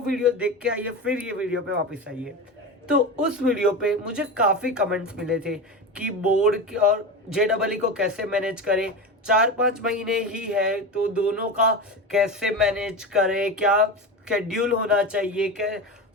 वीडियो देख के आइए, फिर ये वीडियो पे वापस आइए। तो उस वीडियो पे मुझे काफी कमेंट्स मिले थे कि बोर्ड की और JEE को कैसे मैनेज करें। 4-5 महीने ही है तो दोनों का कैसे मैनेज करें, क्या शेड्यूल होना चाहिए, क्या।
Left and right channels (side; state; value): both; normal; correlation 0.23